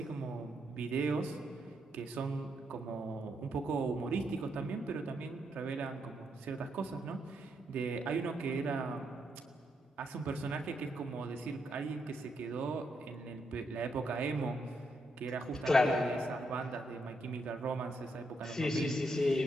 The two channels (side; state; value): both; normal; correlation 0.79